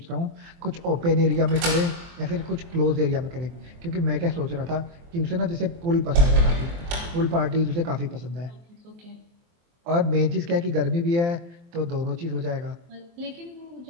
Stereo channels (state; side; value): late; left; 23 ms